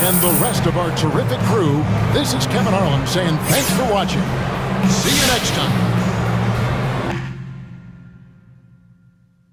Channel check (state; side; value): identical; both; correlation 1.00